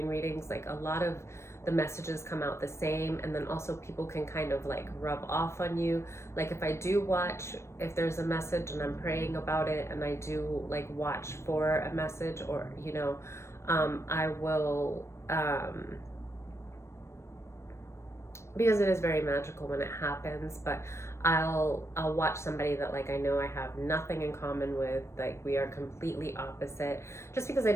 readings, like, a lot of the messages come out the same, and then also people can kind of like rub off on you. Like, if I do watch, if there's a message and I'm praying about it, and I do like watch for a message, or I will, because it is very magical when it happens. But I'll watch somebody that, like, I know I have nothing in common with, like, we are completely opposite, just because I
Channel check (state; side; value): late; right; 0.13 ms